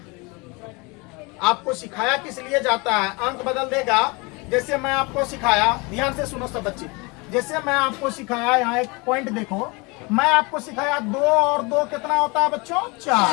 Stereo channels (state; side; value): quieter; right; 27.6 dB